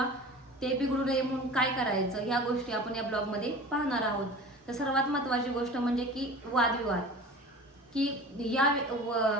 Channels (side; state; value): both; normal; correlation 0.38